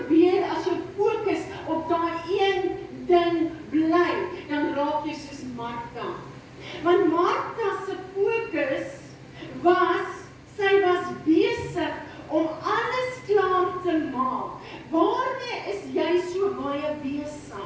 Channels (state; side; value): identical; both; correlation 1.00